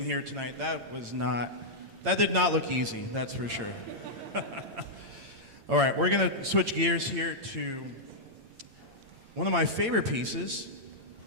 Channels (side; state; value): left; late; 8.8 ms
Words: here tonight. That did not look easy, that's for sure. All right, we're gonna switch gears here to one of my favorite pieces.